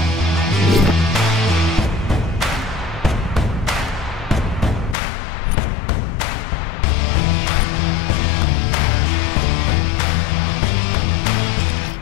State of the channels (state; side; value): drops out; right; at 5.0 s